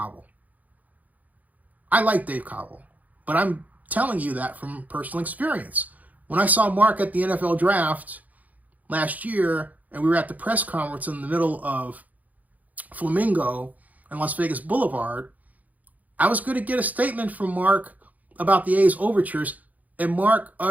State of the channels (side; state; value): left; late; 0.078 ms